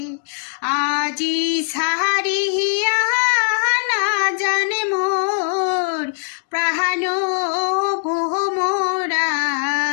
আজি সাহারিয়া না জানে মোর প্রাণ ভোমরা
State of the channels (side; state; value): right; silent; 64 dB below the other